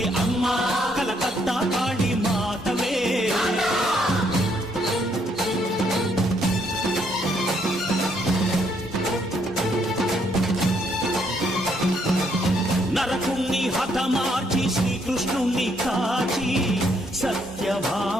అమ్మ, కలకత్తా కాళీ మాతవే. నరకుణ్ణి హతమార్చి శ్రీకృష్ణుణ్ణి కాచి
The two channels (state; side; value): normal; both; correlation 0.71